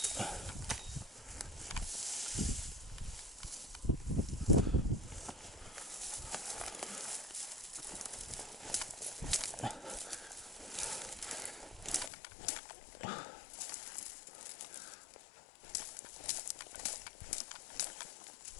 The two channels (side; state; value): right; drops out; at 12.1 s